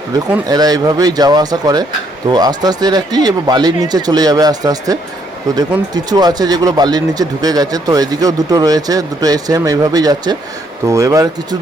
দেখুন এরা এইভাবেই যাওয়া আসা করে। তো আস্তে আস্তে এরা কি এবার বালির নিচে চলে যাবে আস্তে আস্তে। তো দেখুন কিছু আছে যেগুলো বালির নিচে ঢুকে গেছে, তো এদিকেও দুটো রয়েছে, দুটো সেম এইভাবেই যাচ্ছে। তো এবার কিছু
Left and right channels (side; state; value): both; normal; correlation 0.70